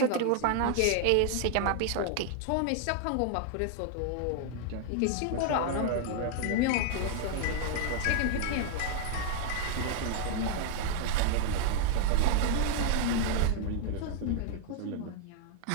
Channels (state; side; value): different; both; correlation 0.00